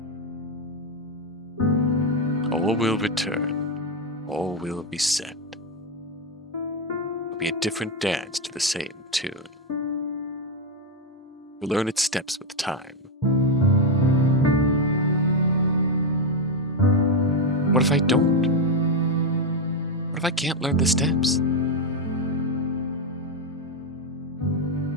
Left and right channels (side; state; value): both; normal; correlation 0.05